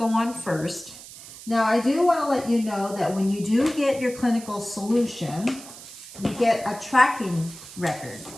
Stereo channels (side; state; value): right; noise; hiss, 16 dB below the sound